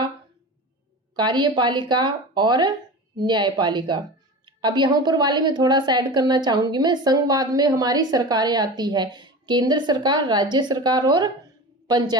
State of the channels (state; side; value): normal; both; correlation 0.31